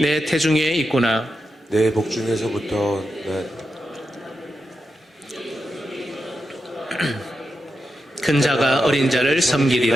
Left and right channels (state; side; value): normal; both; correlation 0.88